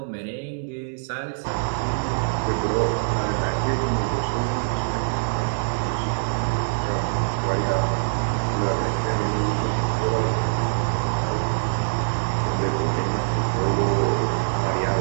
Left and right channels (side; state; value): left; silent; digital silence